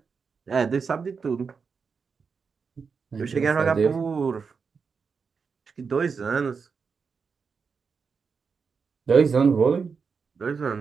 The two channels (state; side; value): quieter; left; 5.5 dB